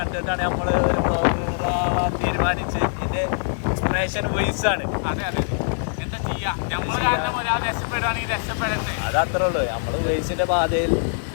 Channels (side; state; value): right; silent; digital silence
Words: നമ്മൾ ഒരു വ്ളോഗർ ആവാൻ തീരുമാനിച്ച്. ഇതിന്റെ ഇൻസ്പിറേഷൻ വയസ്സാണ്. അതെ എന്താ ചെയ്യാ, രക്ഷപ്പെടണ്ടേ. അതത്രേ ഉള്ളൂ. നമ്മള് വയസ്സിന്റെ പാതയിൽ